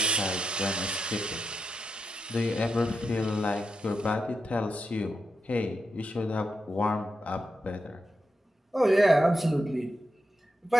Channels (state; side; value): normal; both; correlation 0.86